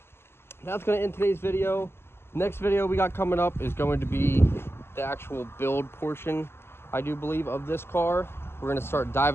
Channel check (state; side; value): late; right; 0.12 ms